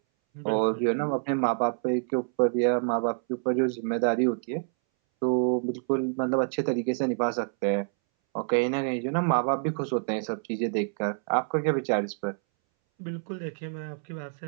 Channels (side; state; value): left; silent; 60 dB below the other